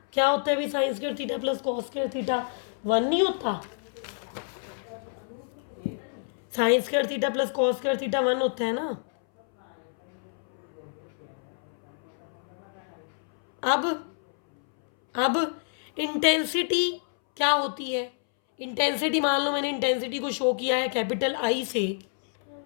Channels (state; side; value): silent; right; 59 dB below the other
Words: क्या होता है भाई, sine square theta plus cos square theta 1 नहीं होता, sine square theta plus cos square theta 1 होता है ना। अब इंटेंसिटी क्या होती है, इंटेंसिटी मान लो मैंने इंटेंसिटी को शो किया है कैपिटल आई से,